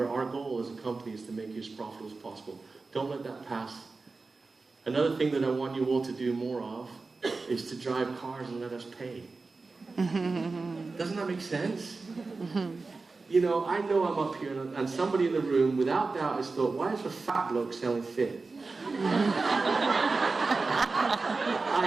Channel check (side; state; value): left; quieter; 3.9 dB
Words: our goal as a company is to make you as profitable as possible. Don't let that pass. Another thing that I want you all to do more of is to drive cars and let us pay. Doesn't that make sense? You know I'm up here and somebody in the room, without doubt, has thought, why is a fat bloke selling fit?